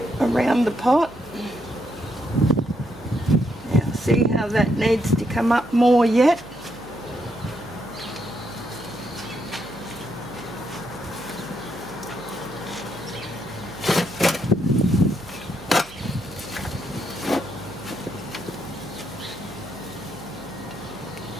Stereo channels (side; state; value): right; noise; hum, 22 dB below the sound